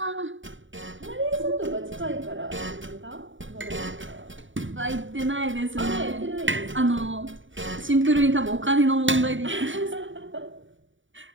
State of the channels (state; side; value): late; left; 0.56 ms